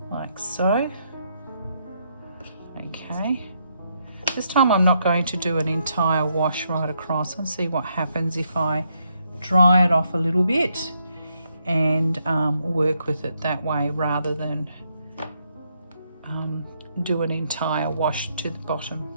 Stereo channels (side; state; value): both; inverted; correlation -0.77